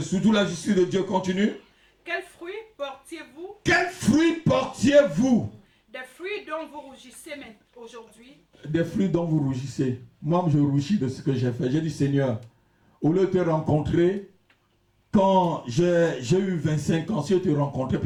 surtout la justice de Dieu. Continue. Quels fruits portiez-vous? Quels fruits portiez-vous? Des fruits dont vous rougissez aujourd'hui. Des fruits dont vous rougissez. Moi, je rougis de ce que j'ai fait. J'ai dit, Seigneur, au lieu de te rencontrer, quand j'ai eu 25 ans, si je te rencontrais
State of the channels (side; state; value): both; identical; correlation 1.00